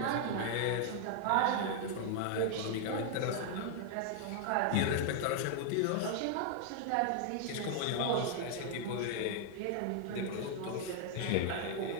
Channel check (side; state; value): both; different; correlation 0.00